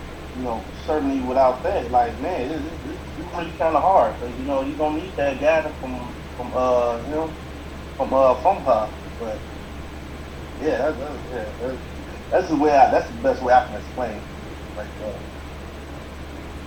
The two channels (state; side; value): identical; both; correlation 1.00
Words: certainly without that, like, man, it's really kind of hard, because you gonna need that guidance him from her, but yeah, that's the best way I can explain it. Like,